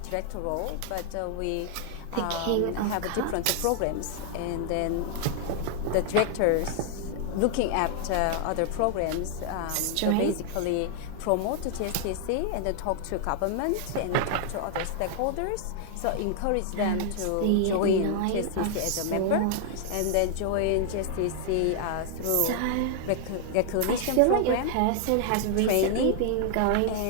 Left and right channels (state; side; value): different; both; correlation 0.00